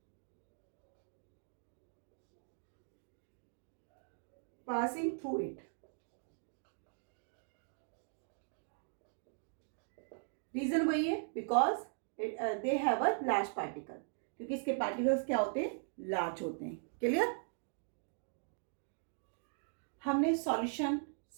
through it। Reason वही है, because they have a large particle, क्योंकि इसके पार्टिकल्स क्या होते हैं, लार्ज होते हैं। क्लियर। हमने सॉल्यूशन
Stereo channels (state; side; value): silent; left; digital silence